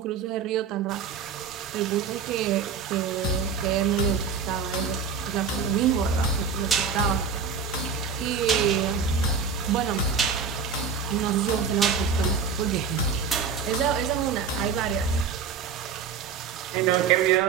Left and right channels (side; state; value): left; quieter; 6.0 dB